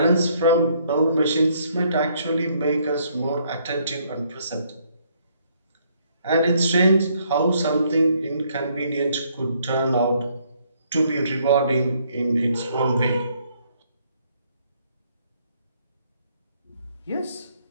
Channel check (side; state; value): both; inverted; correlation -0.68